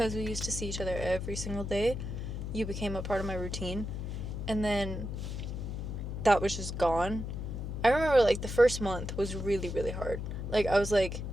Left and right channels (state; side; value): noise; left; hum, 5 dB below the sound